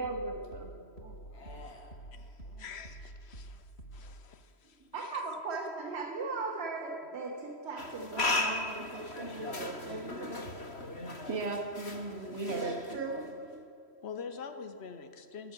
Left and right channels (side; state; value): right; late; 3.1 ms